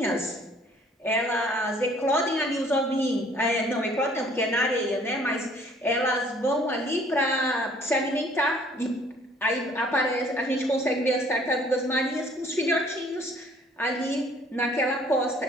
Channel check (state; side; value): normal; both; correlation 0.57